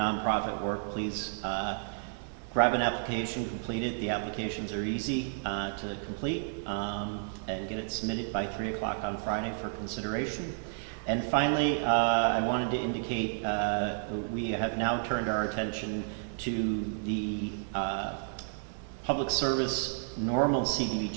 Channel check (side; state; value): left; silent; digital silence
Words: work, please grab an application, complete it. The applications are easy to complete and get it submitted by 3 o'clock on Friday for consideration. And finally, I wanted to indicate we have now turned our attention to the Public Service Normal